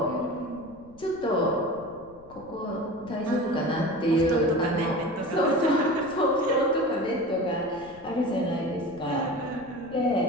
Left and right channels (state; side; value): noise; left; rumble, 23 dB below the sound